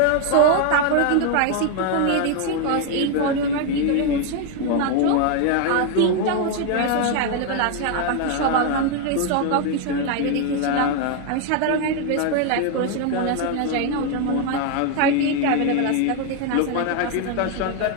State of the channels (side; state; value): both; different; correlation 0.01